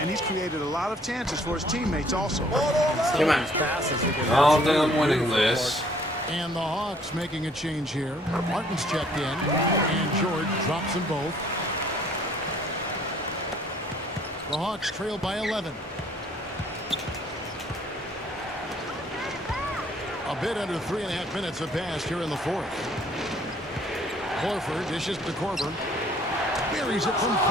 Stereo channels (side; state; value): both; normal; correlation 0.60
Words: he's created a lot of chances for his teammates also. Come on. I don't think I'm winning this. And the Hawks making a change here. Martin's checked in, and George drops them both. The Hawks trail by 11. A bit under 3.5 minutes have passed here in the 4th. Horford dishes to Korver. Buries it from